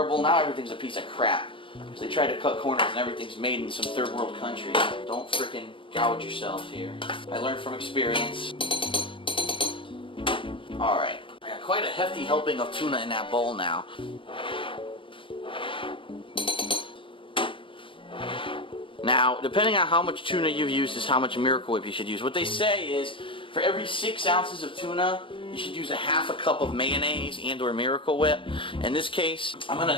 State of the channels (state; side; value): late; right; 0.25 ms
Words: Now everything's a piece of crap. Because they try to cut corners and everything's made in some third world country. Don't frickin' gouge yourself here. I learned from experience. Alright, I got quite a hefty helping of tuna in that bowl now. Now, depending on how much tuna you've used is how much Miracle Whip you should use. What they say is, for every 6 ounces of tuna, you should use a ½ cup of mayonnaise and or Miracle Whip. In this case, I'm going